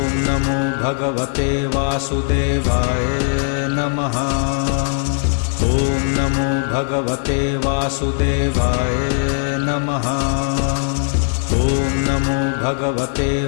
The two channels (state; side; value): silent; right; 61 dB below the other